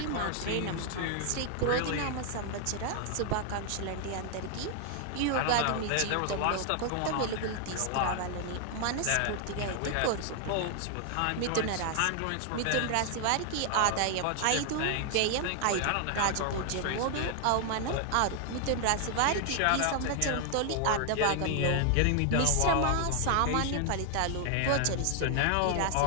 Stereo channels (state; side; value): different; both; correlation 0.00